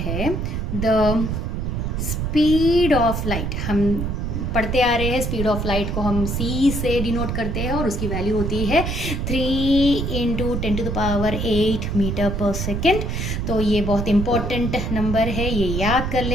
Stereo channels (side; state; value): right; noise; rumble, 2 dB below the sound